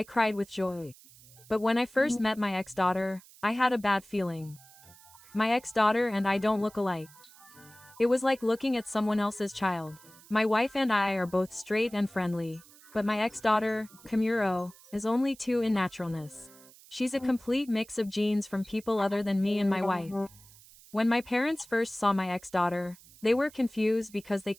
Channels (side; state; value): right; noise; hiss, 23 dB below the sound